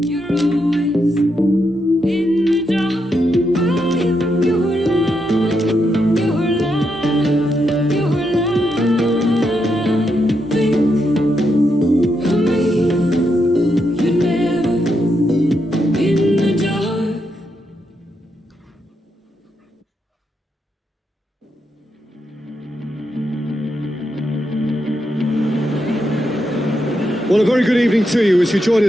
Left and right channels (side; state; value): both; normal; correlation 0.82